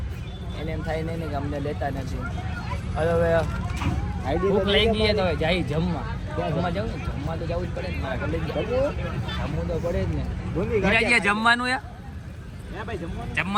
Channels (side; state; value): both; identical; correlation 1.00